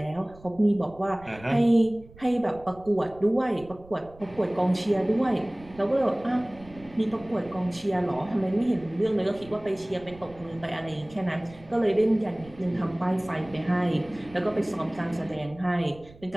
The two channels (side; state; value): right; noise; rumble, 21 dB below the sound